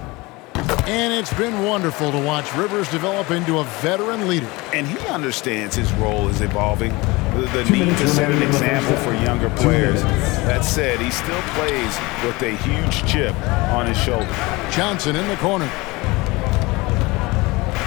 And it's been wonderful to watch Rivers develop into a veteran leader. And he understands his role is evolving. The need to set an example for younger players. That said, he still plays with a huge chip on his shoulder. Johnson in the corner.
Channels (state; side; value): quieter; right; 23.1 dB